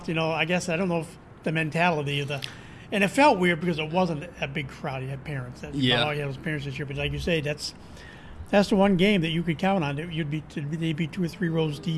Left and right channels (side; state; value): both; identical; correlation 1.00